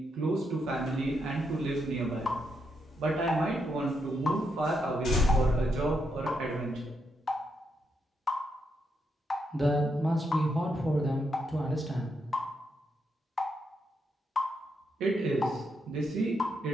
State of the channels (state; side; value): normal; both; correlation 0.80